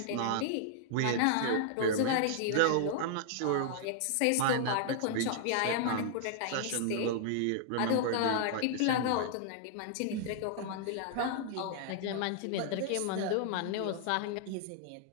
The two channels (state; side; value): different; both; correlation -0.01